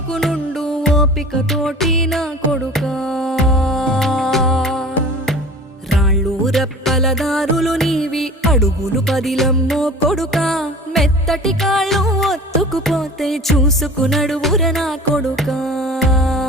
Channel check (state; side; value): normal; both; correlation 0.40